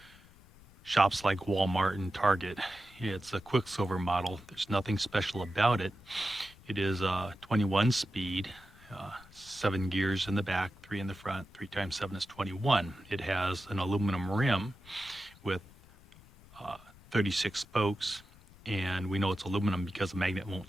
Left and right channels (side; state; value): left; noise; rumble, 24 dB below the sound